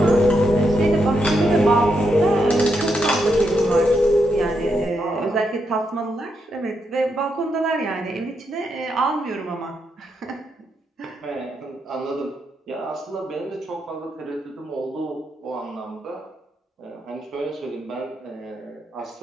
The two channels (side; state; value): both; normal; correlation 0.81